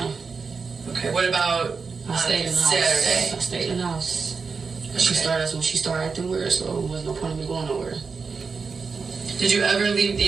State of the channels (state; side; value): quieter; left; 5.0 dB